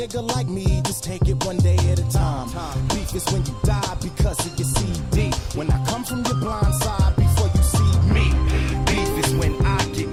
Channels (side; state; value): both; identical; correlation 1.00